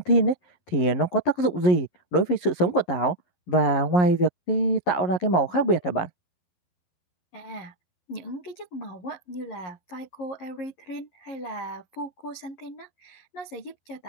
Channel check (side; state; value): right; late; 11 ms